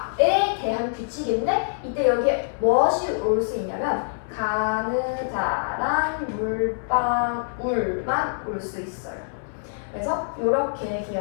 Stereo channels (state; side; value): silent; right; 62 dB below the other